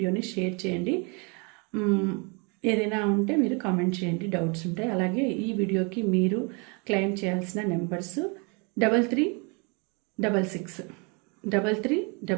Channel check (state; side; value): quieter; left; 32.6 dB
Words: షేర్ చేయండి. ఏదైనా ఉంటే మీరు కామెంట్ చేయండి, డౌట్స్ ఉంటాయి. అలాగే ఈ వీడియోకి మీరు క్లెయిమ్ చేయాల్సిన నెంబర్స్